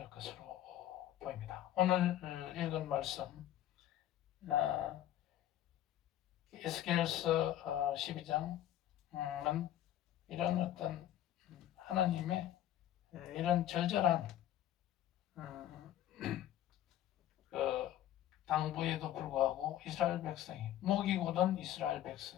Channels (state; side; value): quieter; right; 12.3 dB